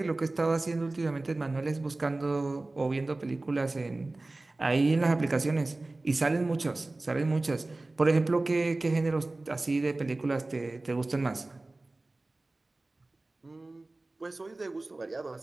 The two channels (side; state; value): left; quieter; 3.0 dB